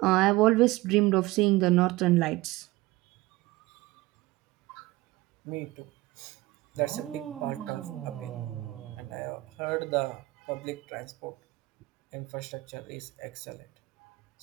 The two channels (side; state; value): left; quieter; 19.5 dB